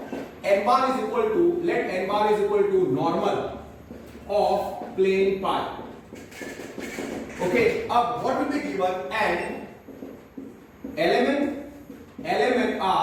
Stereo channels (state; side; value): identical; both; correlation 1.00